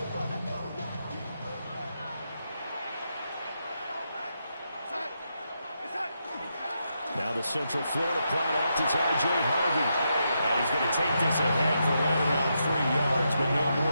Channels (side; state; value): both; inverted; correlation -0.83